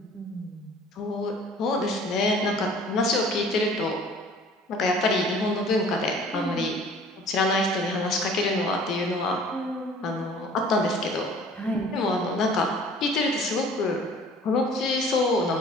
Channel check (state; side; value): normal; both; correlation 0.50